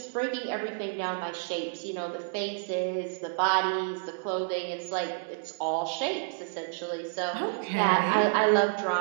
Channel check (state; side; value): silent; left; digital silence